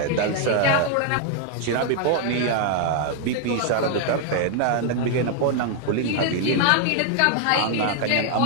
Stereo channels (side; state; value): both; different; correlation 0.00